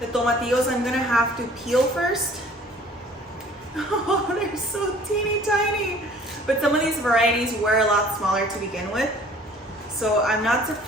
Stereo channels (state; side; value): normal; both; correlation 0.52